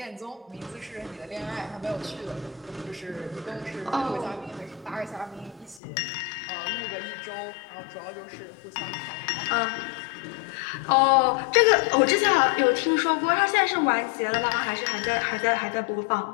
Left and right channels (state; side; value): drops out; right; at 5.8 s